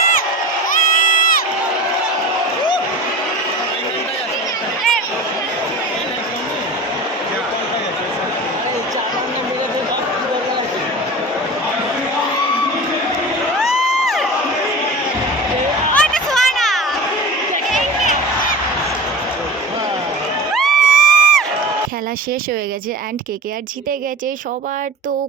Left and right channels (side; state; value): both; normal; correlation 0.33